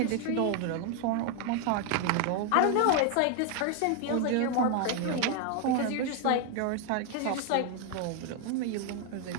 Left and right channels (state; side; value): different; both; correlation 0.01